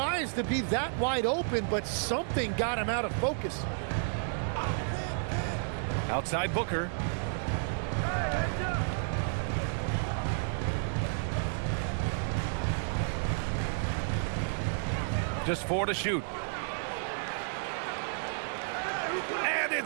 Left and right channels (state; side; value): silent; left; digital silence